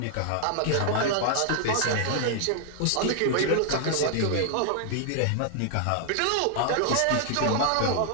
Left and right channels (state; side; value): different; both; correlation -0.01